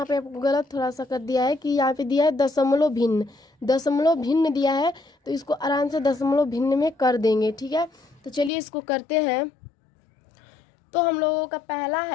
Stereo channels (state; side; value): drops out; right; at 8.5 s